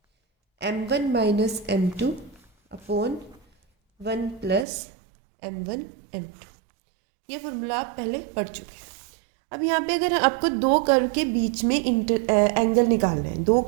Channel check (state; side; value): drops out; left; at 4.7 s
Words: m1 minus m2 upon 1 plus m1 m2। ये फॉर्मूला आप पहले पढ़ चुके हैं। अब यहाँ पे अगर आपको दो कर्व के बीच में एंगल निकालना है, दो